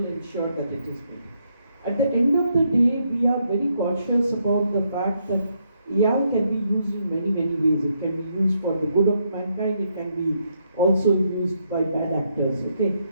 ensure that it is made. At the end of the day, we are very cautious about the fact that AI can be used in many, many ways. It can be used for the good of mankind. It can be also used by bad actors, okay?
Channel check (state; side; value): inverted; both; correlation -0.76